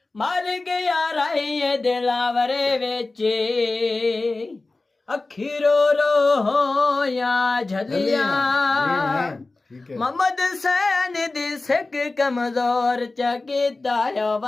ਮਰ ਗਿਆ ਰਾਏ ਦਿਲਾਵਰੇ ਵਿੱਚ ਅੱਖੀ ਰੋ ਰੋ ਹੋਇਆ ਝਲੀਆਂ ਮੁਹੰਮਦ ਸੈਨ ਦੀ ਸਿੱਖ ਕਮਜ਼ੋਰ ਚ ਕੀਤਾ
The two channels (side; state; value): right; quieter; 3.3 dB